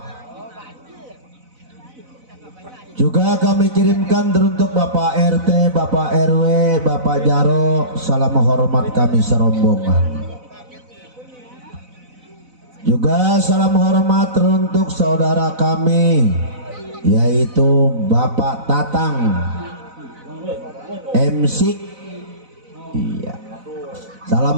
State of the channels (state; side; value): late; left; 4.0 ms